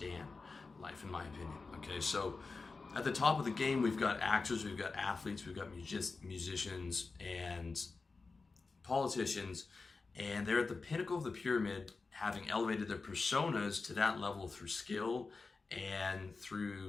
life, in my opinion, okay? So at the top of the game, we've got actors, we've got athletes, we've got musicians, and politicians, and they're at the pinnacle of the pyramid, having elevated their personas to that level through skill and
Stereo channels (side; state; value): right; quieter; 4.1 dB